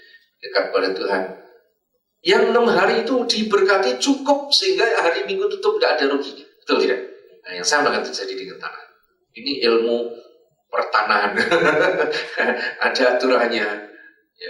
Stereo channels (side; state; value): both; identical; correlation 1.00